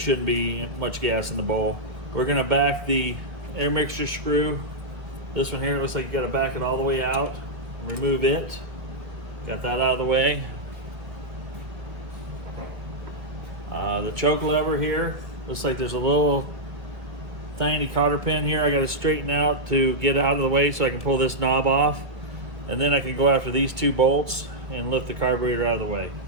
be much gas in the bowl. We're going to back the air mixture screw. This one here, it looks like you got to back it all the way out. Remove it. Got that out of the way. The choke lever here, looks like there's a little tiny cotter pin here I got to straighten out to get out of the way so I can pull this knob off, and then I can go after these 2 bolts and lift the carburetor out of the way.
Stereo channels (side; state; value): left; late; 1.6 ms